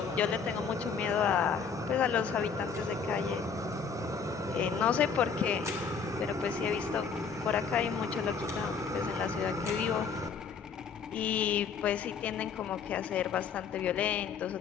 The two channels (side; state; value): right; quieter; 6.0 dB